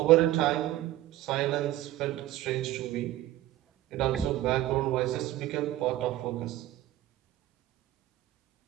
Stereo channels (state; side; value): quieter; left; 14.8 dB